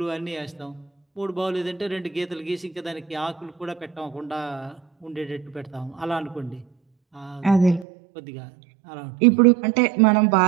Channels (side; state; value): left; drops out; at 7.9 s